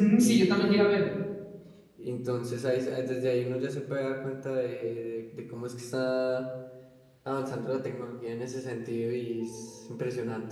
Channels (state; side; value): identical; both; correlation 1.00